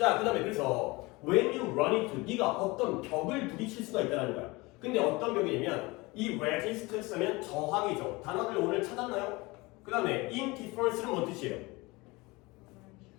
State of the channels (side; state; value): right; quieter; 23.5 dB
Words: 그 다음에 그래서 when you run into 네가 어떤 벽을 부딪힐 수가 있다는 거야. 근데 어떤 벽이냐면 이 resist 쓰면 저항이죠. 단어들 오늘 찾았나요? 그 다음에 indifference는 뭔 뜻이에요?